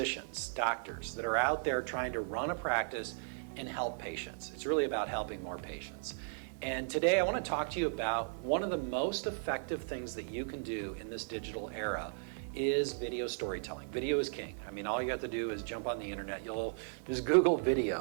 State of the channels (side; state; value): left; silent; digital silence